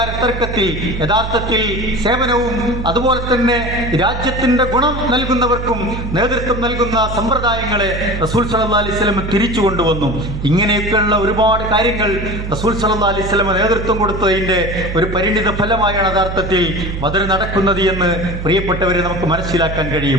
തർക്കത്തിൽ യഥാർത്ഥത്തിൽ സേവനവും അതുപോലെ തന്നെ രാജ്യത്തിന്റെ ഗുണം നൽകുന്നവർക്കും നേതൃത്വം നൽകുന്ന സമ്പ്രദായങ്ങളെ റസൂൽ സല്ലല്ലാഹു അലൈഹി വസല്ലം തിരിച്ചു കൊണ്ടുവന്നു. ഇങ്ങനെയൊക്കെയുള്ള ഒരുപാട് കാര്യങ്ങൾ റസൂൽ സല്ലല്ലാഹു അലൈഹി വസല്ലം നേതൃത്വം കൊടുത്തതിന്റെ ഒരു പരിണിത ഫലമായാണ് യഥാർത്ഥത്തിൽ ബദർ നടക്കുന്നത് എന്ന് പ്രിയപ്പെട്ടവരെ നമുക്ക് മനസ്സിലാക്കാൻ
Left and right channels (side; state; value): right; noise; hum, 6 dB below the sound